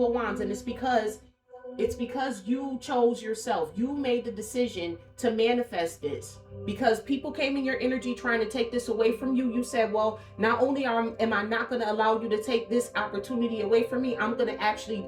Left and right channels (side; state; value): both; identical; correlation 1.00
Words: of Wands, and it's because you chose yourself. You made the decision to manifest this. Because people came in your energy trying to take this away from you. You said, well, not only am I not going to allow you to take this opportunity away from me, I'm going to actually